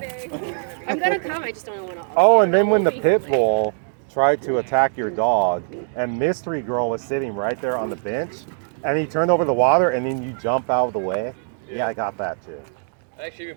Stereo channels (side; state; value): left; silent; digital silence